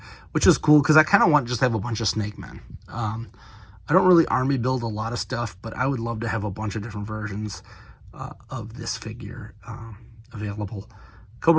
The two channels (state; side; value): identical; both; correlation 1.00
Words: which is cool because I kind of want just to have a bunch of Snake Men. I don't really army build a lot of stuff, but I would love to have a bunch of different versions of this figure available.